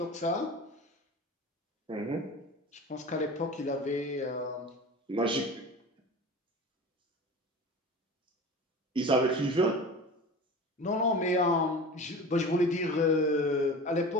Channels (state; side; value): normal; both; correlation 0.35